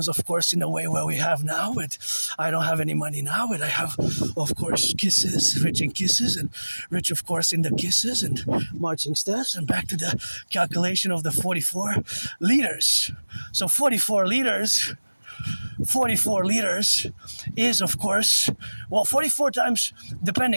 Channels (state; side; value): inverted; both; correlation -1.00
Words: of course, in the way where we have now. But I don't have any money now, but I have, of course, kisses, rich in kisses, and rich, of course, in the kisses and marching steps. And back to the calculation of the 44 liters. So 44 liters is, of course, well, 44 times,